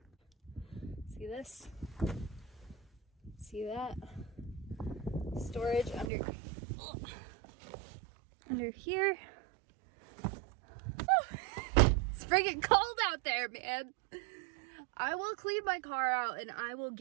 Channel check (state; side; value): drops out; left; at 6.1 s